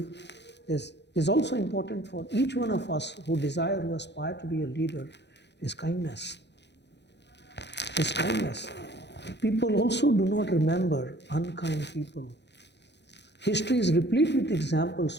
is also important for each one of us who desire, who aspire to be a leader, is kindness. Is kindness. People also do not remember unkind people. History is replete with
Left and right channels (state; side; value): late; right; 0.50 ms